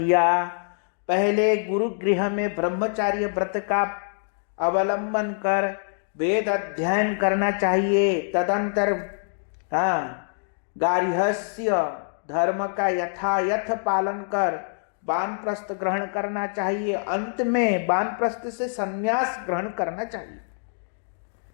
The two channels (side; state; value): right; silent; digital silence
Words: पहले गुरु गृह में ब्रह्मचार्य व्रत का अवलंबन कर वेद अध्ययन करना चाहिए। तदंतर गार्हस्थ्य धर्म का यथायथ पालन कर वानप्रस्थ ग्रहण करना चाहिए। अंत में वानप्रस्थ से संन्यास ग्रहण करना चाहिए।